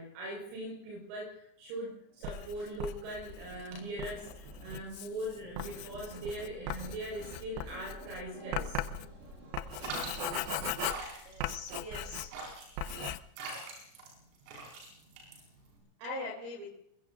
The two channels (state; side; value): late; left; 34 ms